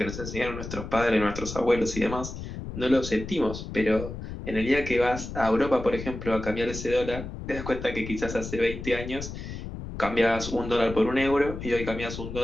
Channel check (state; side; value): noise; left; rumble, 8 dB below the sound